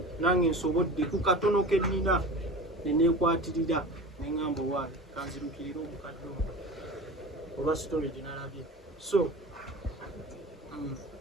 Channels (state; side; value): normal; both; correlation 0.35